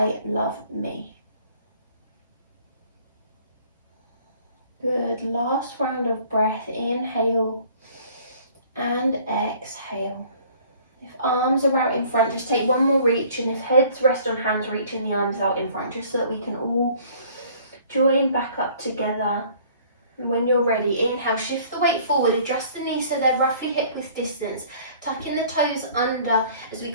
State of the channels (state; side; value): inverted; both; correlation -0.54